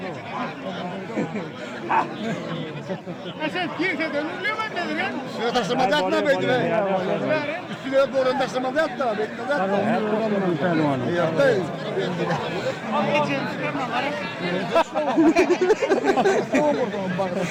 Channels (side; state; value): both; identical; correlation 1.00